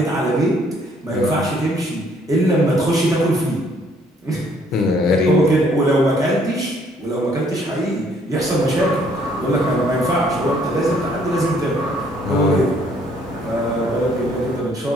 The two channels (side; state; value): both; normal; correlation 0.64